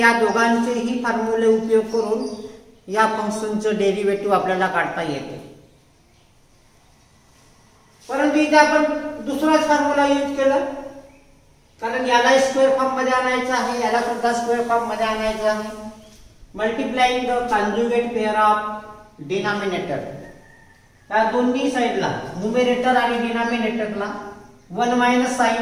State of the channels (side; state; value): both; identical; correlation 1.00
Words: दोघांचेही फॉर्म्युले उपयोग करून या फंक्शनचं डेरिव्हेटिव्ह आपल्याला काढता येते. परंतु इथे आपण दुसराच फॉर्म्युला यूज केला कारण याला स्क्वेअर फॉर्म मध्ये आणायचं आहे, याला सुद्धा स्क्वेअर फॉर्म मध्ये आणायचं आहे. Multiplying the conjugate pair of denominator. या दोन्ही साइडला न्यूमरेटर आणि डिनॉमिनेटरला 1 minus